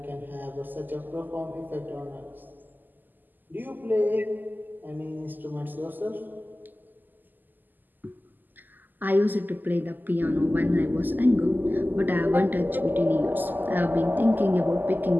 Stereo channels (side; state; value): left; late; 0.087 ms